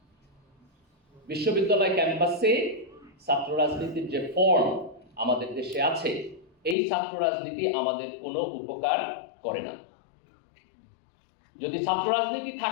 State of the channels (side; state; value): right; drops out; at 6.8 s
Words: বিশ্ববিদ্যালয় ক্যাম্পাসে ছাত্র রাজনীতির যে ফর্ম আমাদের দেশে আছে, এই ছাত্র রাজনীতি আমাদের কোনো উপকার করে না। যদি ছাত্র রাজনীতি